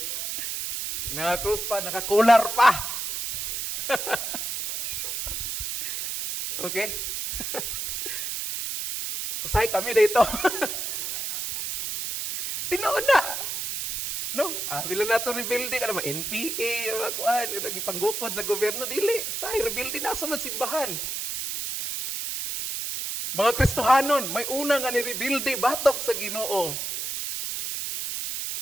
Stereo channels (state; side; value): noise; right; hiss, 4 dB below the sound